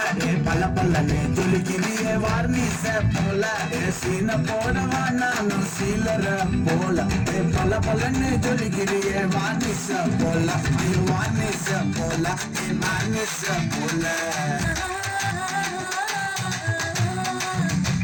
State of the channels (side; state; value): both; identical; correlation 1.00